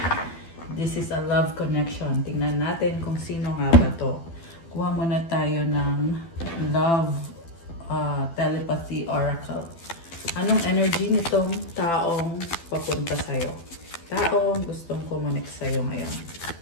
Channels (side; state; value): right; late; 12 ms